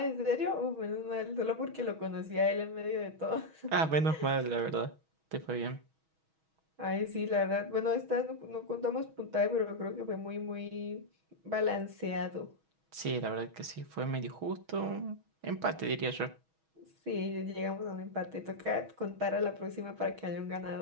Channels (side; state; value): left; late; 6.3 ms